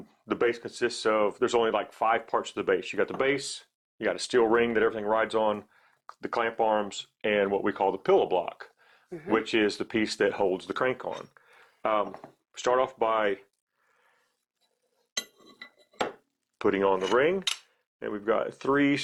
the base consists of, there's only like 5 parts of the base. You got the base, you got a steel ring that everything rides on, the clamp arms, and what we call the pillow block, which is the piece that holds the crank on. Start off by putting on the ring, and we've got 3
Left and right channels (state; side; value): identical; both; correlation 1.00